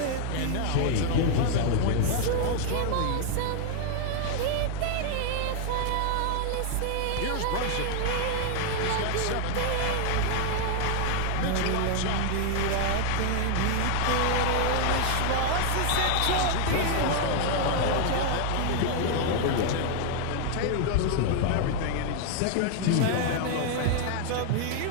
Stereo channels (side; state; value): both; different; correlation 0.00